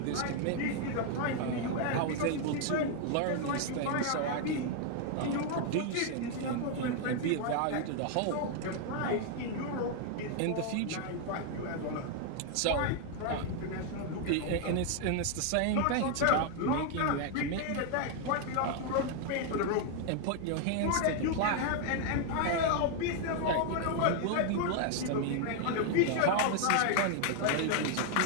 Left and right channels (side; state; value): both; different; correlation 0.00